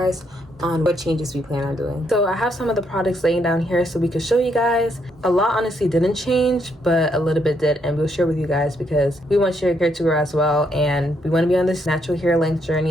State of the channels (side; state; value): both; normal; correlation 0.75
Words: on what changes we plan on doing. So I have some of the products laying down here so we could show you guys. A lot honestly didn't change, but a little bit did, and we'll share with you guys because we want your hair to grow as well, and we want to be on this natural hair length